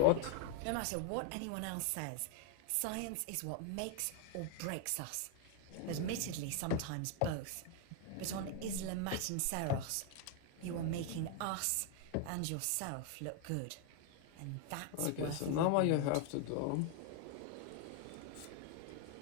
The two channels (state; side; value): different; both; correlation 0.01